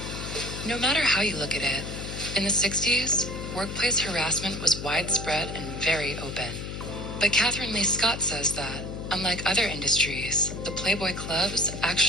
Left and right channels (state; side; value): noise; left; hum, 7 dB below the sound